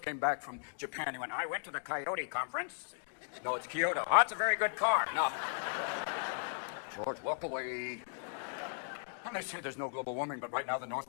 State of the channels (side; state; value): right; silent; digital silence